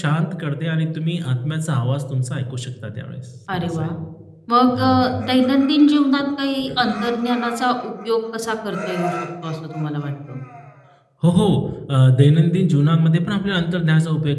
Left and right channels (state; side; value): identical; both; correlation 1.00